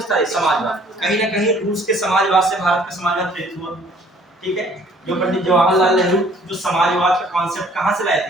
है? समाजवाद। कहीं ना कहीं रूस के समाजवाद से भारत का समाजवाद प्रेरित हुआ। ठीक है, जो पंडित जवाहरलाल नेहरू जो समाजवाद का कॉन्सेप्ट कहां से लाए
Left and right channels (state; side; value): normal; both; correlation 0.58